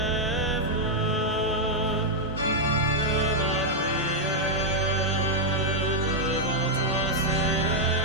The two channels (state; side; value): normal; both; correlation -0.02